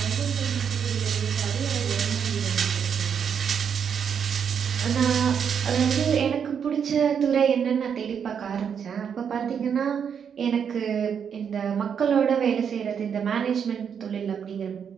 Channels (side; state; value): left; quieter; 7.4 dB